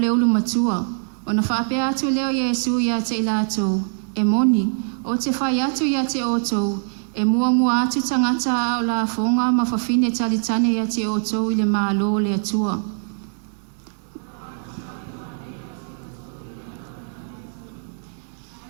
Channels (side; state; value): left; silent; 64 dB below the other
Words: ulu matua. Ona whaapea atu leo Yesu ia te ilatou. E moni, o te whai atu ia te otou. E mua atu tangata o la fonga ma whawhine talitane ia te otou i le mālo le atua.